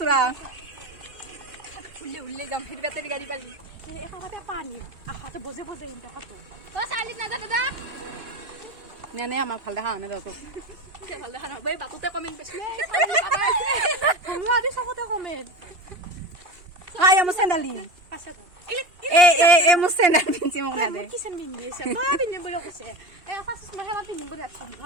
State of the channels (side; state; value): left; late; 2.8 ms